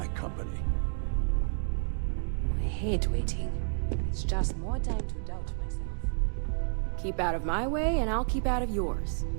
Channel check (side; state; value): left; silent; digital silence